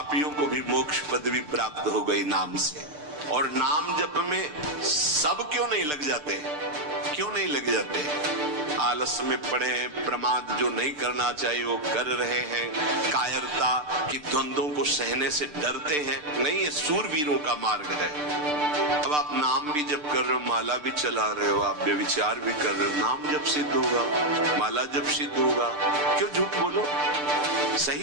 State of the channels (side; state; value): left; late; 6.7 ms